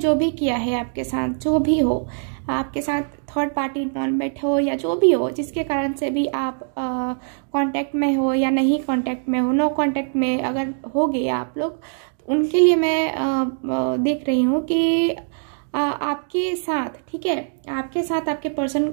भी किया है आपके साथ, जो भी हो आपके साथ, थर्ड पार्टी इन्वॉल्वमेंट हो या जो भी हो, जिसके कारण से भी आप कांटेक्ट में हो या नहीं कांटेक्ट में हो, नो कांटेक्ट में अगर हो गए आप लोग, तो उनके लिए मैं देख रही हूँ कि आपके साथ, ठीक है, आपके साथ आपके पर्सन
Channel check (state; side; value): silent; left; digital silence